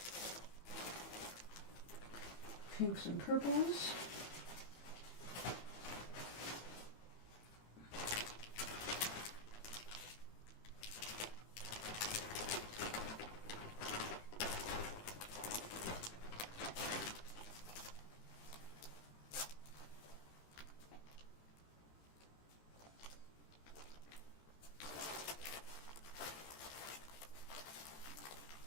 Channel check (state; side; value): late; right; 18 ms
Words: Pinks and purples.